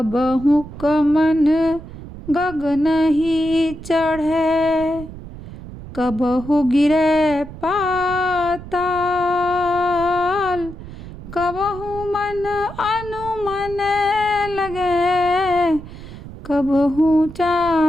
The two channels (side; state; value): right; noise; rumble, 13 dB below the sound